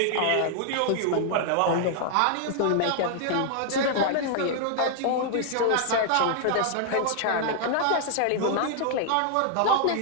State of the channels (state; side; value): different; both; correlation 0.00